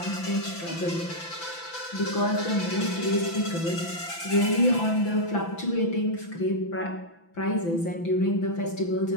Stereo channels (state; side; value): late; right; 6.0 ms